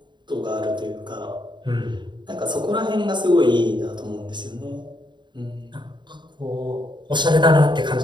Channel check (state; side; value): late; left; 0.22 ms